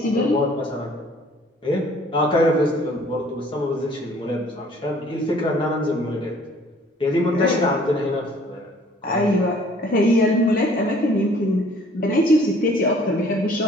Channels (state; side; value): normal; both; correlation 0.55